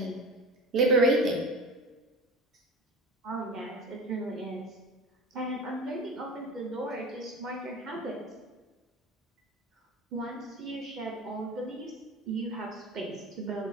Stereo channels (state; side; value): normal; both; correlation 0.32